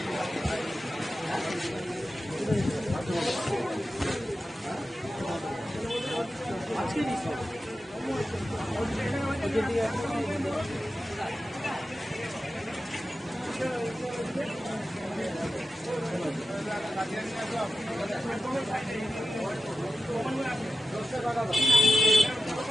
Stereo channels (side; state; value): both; normal; correlation 0.92